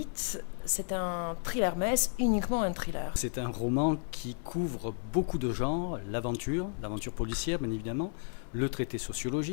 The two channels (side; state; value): right; silent; 56 dB below the other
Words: C'est un thriller, mais est-ce uniquement un thriller? C'est un roman qui couvre beaucoup de genres, l'aventure policière bien évidemment, le traité